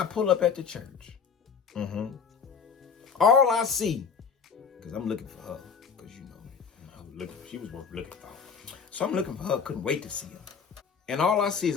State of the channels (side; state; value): right; quieter; 6.2 dB